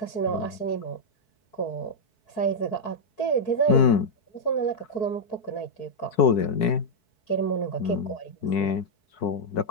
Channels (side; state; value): right; late; 4.6 ms